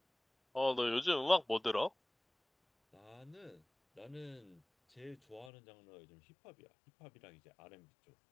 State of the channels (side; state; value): right; drops out; at 5.5 s